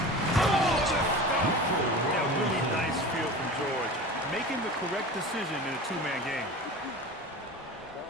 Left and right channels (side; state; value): both; normal; correlation 0.34